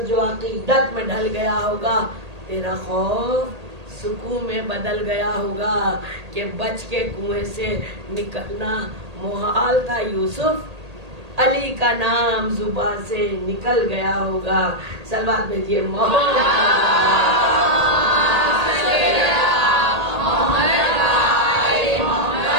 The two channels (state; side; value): late; left; 1.8 ms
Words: جو عقیدت میں ڈھل گیا ہوگا، تیرا خوف سکون میں بدل گیا ہوگا کہ بچ کے کنویں سے نکلنا محال تھا، یوسف علی کا نام زبان سے نکل گیا ہوگا۔ صلوات بھیجیے